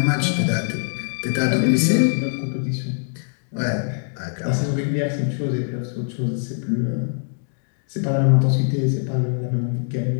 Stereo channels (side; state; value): right; silent; digital silence